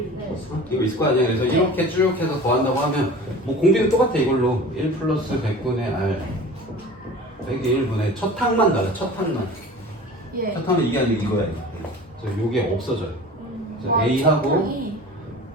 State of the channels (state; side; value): normal; both; correlation 0.39